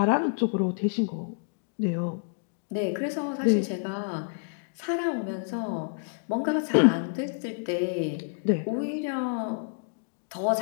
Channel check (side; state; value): right; silent; digital silence